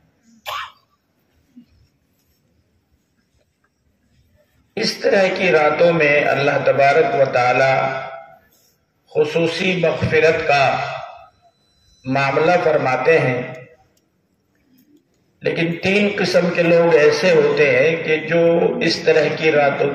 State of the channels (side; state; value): both; identical; correlation 1.00